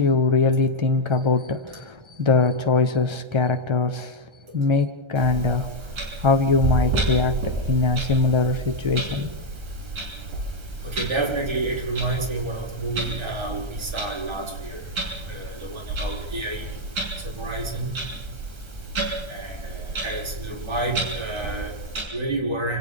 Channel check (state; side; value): late; left; 1.3 ms